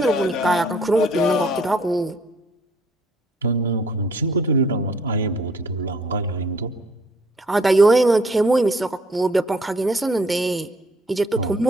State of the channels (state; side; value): normal; both; correlation 0.61